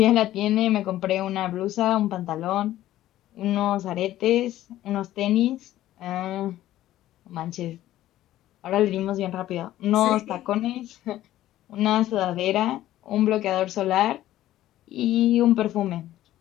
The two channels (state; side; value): quieter; right; 14.1 dB